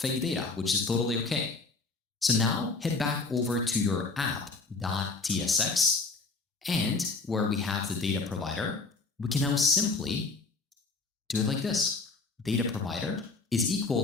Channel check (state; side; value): quieter; right; 3.9 dB